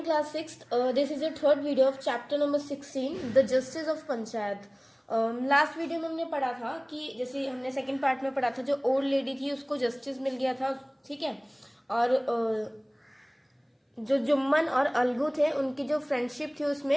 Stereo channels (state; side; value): identical; both; correlation 1.00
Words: class 6th. This is your third video of chapter number 16, the justice of panchayat. Last video में हमने पढ़ा था कि जैसे हमने सेकंड पार्ट में पढ़ा था, जो ओल्ड लेडी थी उसको जस्टिस मिल गया था, ठीक है. और जो जुम्मन और अलगू थे उनकी जो फ्रेंडशिप थी